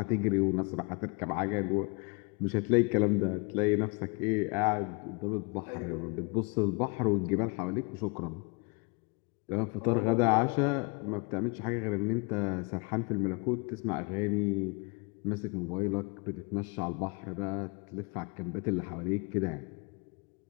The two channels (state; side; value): quieter; right; 31.6 dB